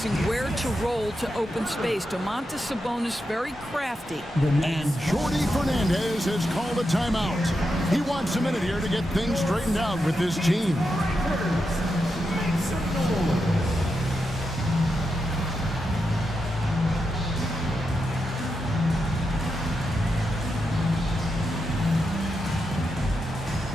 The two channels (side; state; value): both; normal; correlation 0.86